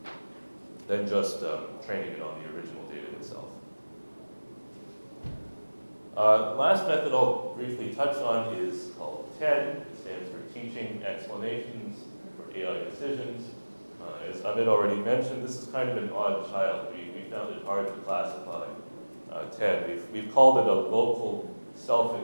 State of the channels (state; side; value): inverted; both; correlation -1.00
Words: than just training it on the original data itself. Last method I'll briefly touch on is called TED. It stands for Teaching Explanations for AI Decisions. As Amit already mentioned, this is kind of an odd child. We found it hard to classify TED. We've called it a local